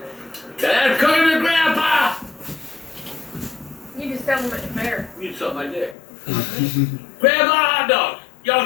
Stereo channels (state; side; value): drops out; right; at 6.0 s